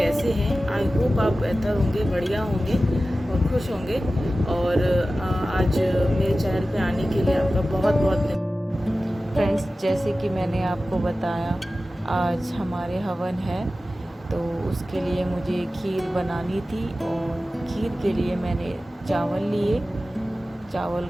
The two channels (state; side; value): normal; both; correlation 0.95